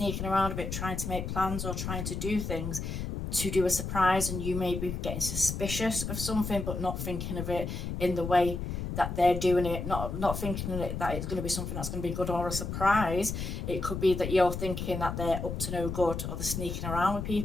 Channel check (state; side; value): noise; left; rumble, 4 dB below the sound